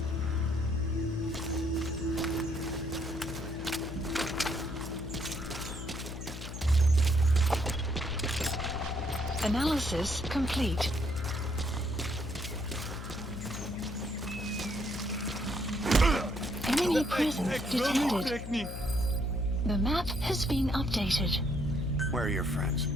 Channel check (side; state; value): left; noise; hum, 8 dB below the sound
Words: Analysis complete. Enemy presence detected. The map has been updated. Where are your friends?